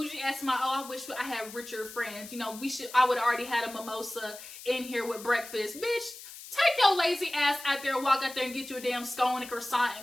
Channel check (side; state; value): left; noise; hiss, 14 dB below the sound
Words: ass, I wish I had richer friends. You know, I would have already had a mimosa in here with breakfast. Bitch, take your lazy ass out there, walk out there and get you a damn scone and croissant